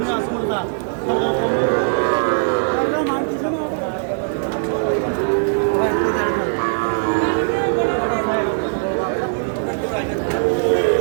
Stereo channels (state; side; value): silent; left; digital silence